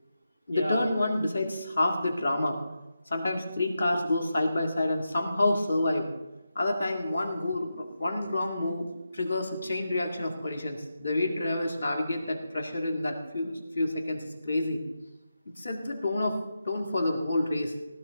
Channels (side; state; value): both; inverted; correlation -0.88